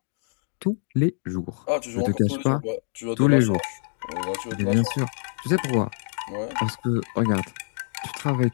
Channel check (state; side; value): silent; right; digital silence